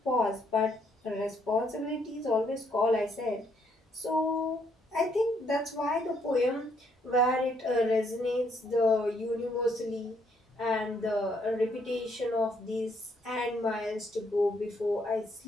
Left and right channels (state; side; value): normal; both; correlation 0.71